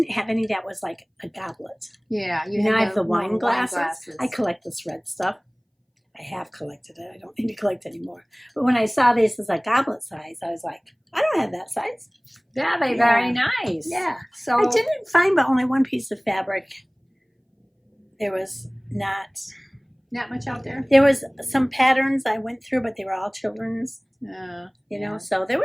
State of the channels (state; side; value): identical; both; correlation 1.00